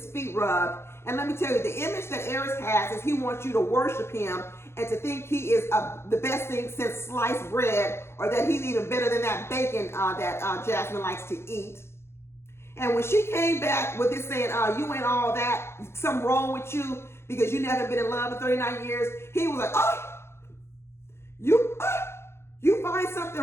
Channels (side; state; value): right; late; 0.12 ms